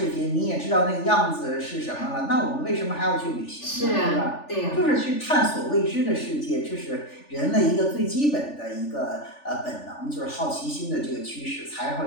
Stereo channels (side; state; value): right; late; 3.4 ms